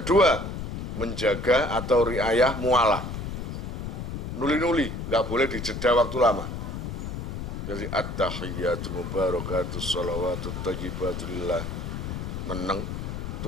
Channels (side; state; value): left; noise; rumble, 5 dB below the sound